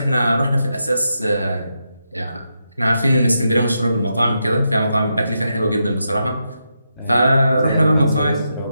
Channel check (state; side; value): inverted; both; correlation -0.84